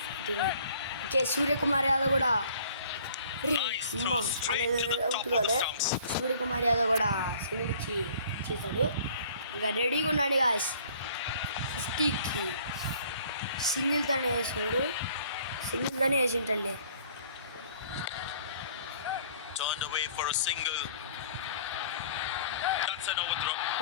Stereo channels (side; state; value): both; inverted; correlation -0.54